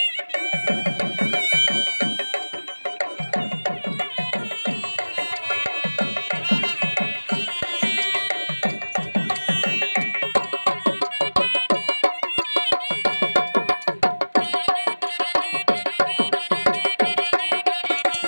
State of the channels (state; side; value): inverted; both; correlation -1.00